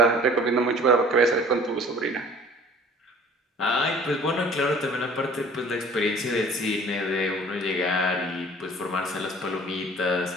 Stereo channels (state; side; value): normal; both; correlation 0.49